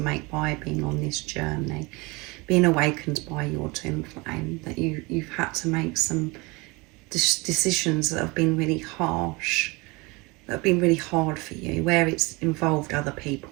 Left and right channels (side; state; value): left; quieter; 25.5 dB